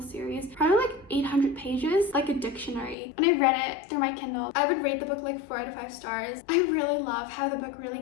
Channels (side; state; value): right; drops out; at 3.0 s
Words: series. Probably like 800 pages. Like a dictionary. When I read it through my Kindle, I would rate the book like 4 out of 5 stars. I really love how the book really